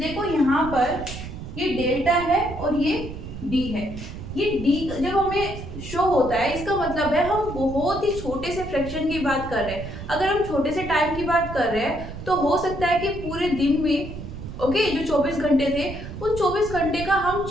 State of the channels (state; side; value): noise; right; rumble, 10 dB below the sound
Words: यहाँ पर ये डेल्टा है और ये डी है। ये डी जब हमें शो होता है इसका मतलब है हम बहुत ही छोटे से फ्रैक्शन की बात कर रहे हैं। अगर हम छोटे से टाइम की बात कर रहे हैं तो हो सकता है कि पूरे दिन में, ओके, जो 24 घंटे थे उन 24 घंटे का हम